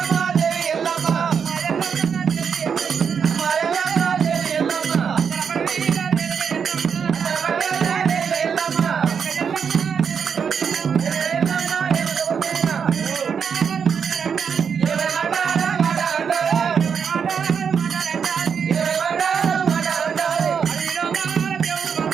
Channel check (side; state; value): left; quieter; 6.8 dB